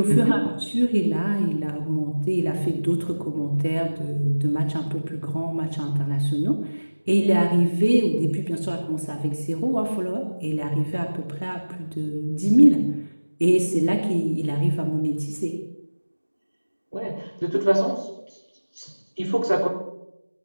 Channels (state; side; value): inverted; both; correlation -1.00